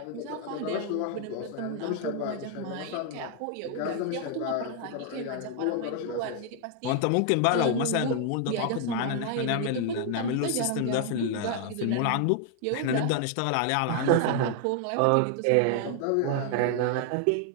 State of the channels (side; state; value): both; different; correlation 0.00